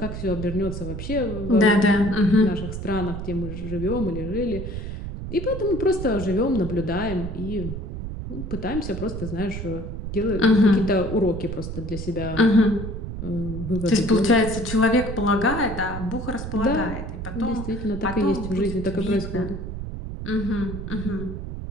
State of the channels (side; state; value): right; noise; rumble, 7 dB below the sound